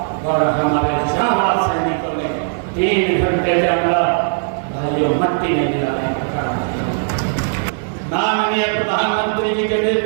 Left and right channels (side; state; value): left; silent; 67 dB below the other